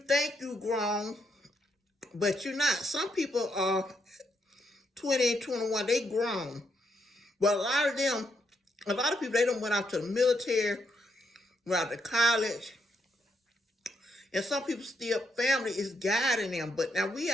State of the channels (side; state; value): both; normal; correlation 0.78